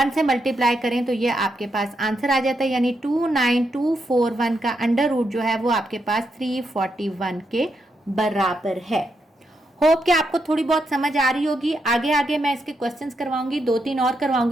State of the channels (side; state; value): both; normal; correlation 0.82